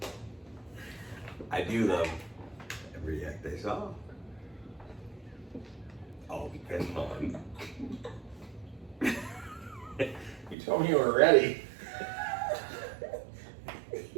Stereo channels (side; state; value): left; drops out; at 10.6 s